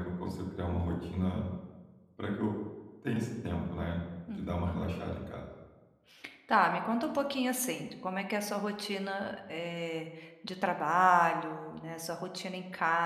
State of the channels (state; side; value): identical; both; correlation 1.00